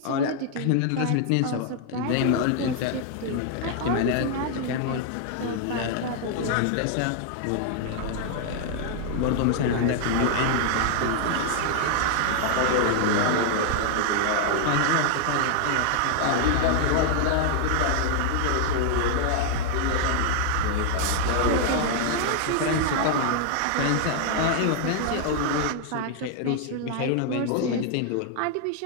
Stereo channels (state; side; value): different; both; correlation 0.00